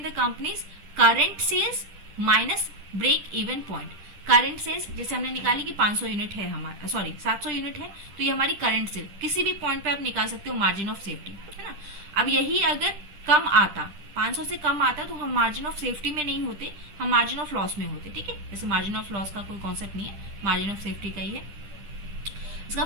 the company's current sales minus break even point. Current sales जैसे हमने निकाली कि 500 यूनिट है हमारा, सॉरी 700 यूनिट है, तो ये हमारी करंट सेल, किसी भी पॉइंट पे आप निकाल सकते हो मार्जिन ऑफ सेफ्टी, है ना। अब यही अगर कम आता, 500 से कम आता, तो हम मार्जिन ऑफ सेफ्टी में नहीं होते, हम मार्जिन ऑफ लॉस में होते। ठीक है, जैसे मार्जिन ऑफ लॉस का कोई कॉन्सेप्ट नहीं है, मार्जिन ऑफ सेफ्टी का ही है। इसका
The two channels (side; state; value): left; late; 10 ms